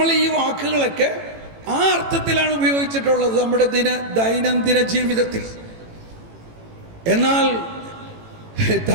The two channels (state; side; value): late; left; 18 ms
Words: ഈ വാക്കുകളൊക്കെ ആ അർത്ഥത്തിലാണ് ഉപയോഗിച്ചിട്ടുള്ളത് നമ്മുടെ ദൈനംദിന ജീവിതത്തിൽ. എന്നാൽ